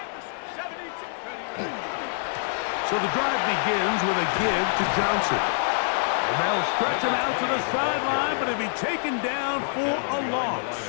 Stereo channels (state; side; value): silent; right; digital silence